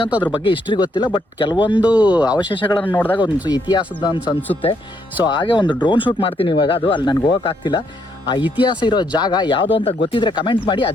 ಅದ್ರ ಬಗ್ಗೆ ಹಿಸ್ಟ್ರಿ ಗೊತ್ತಿಲ್ಲ, ಬಟ್ ಕೆಲವೊಂದು ಅವಶೇಷಗಳನ್ನು ನೋಡಿದಾಗ ಒಂದು ಇತಿಹಾಸದ ಅಂತ ಅನಿಸುತ್ತೆ. ಸೊ ಹಾಗೆ ಒಂದು ಡ್ರೋನ್ ಶೂಟ್ ಮಾಡ್ತೀನಿ ಇವಾಗ. ಅದು ಅಲ್ಲಿ ನನಗೆ ಹೋಗೋಕ್ಕಾಗ್ತಿಲ್ಲ. ಆ ಇತಿಹಾಸ ಇರೋ ಜಾಗ ಯಾವುದು ಅಂತ ಗೊತ್ತಿದ್ರೆ ಕಮೆಂಟ್ ಮಾಡಿ.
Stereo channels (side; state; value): both; normal; correlation 0.74